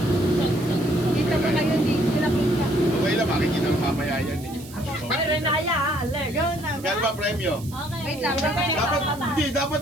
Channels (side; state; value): right; noise; hiss, 18 dB below the sound